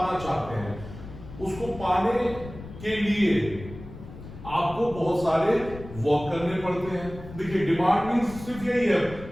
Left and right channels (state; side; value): noise; left; rumble, 14 dB below the sound